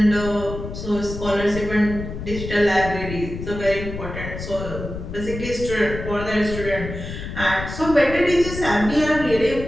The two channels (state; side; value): noise; left; rumble, 8 dB below the sound